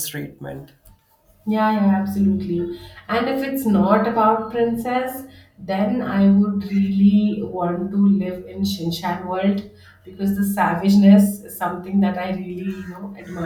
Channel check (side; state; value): both; identical; correlation 1.00